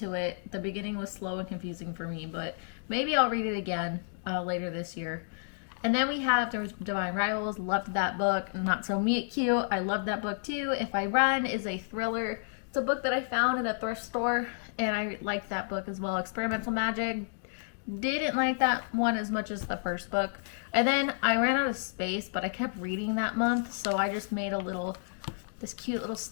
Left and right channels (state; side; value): silent; right; digital silence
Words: it. The beginning was slow and confusing for me, but maybe I'll read it again later this year. And then we have Divine Rivals. Loved that book. Not So Meet Cute. I loved that book too. If I Run is a thriller. It's a book that I found in a thrift store, and I liked that book as well. Experimental Magic. Didn't like that one as much as the first book. And then I ran out of space, but I kept reading that month, so I just made this cute little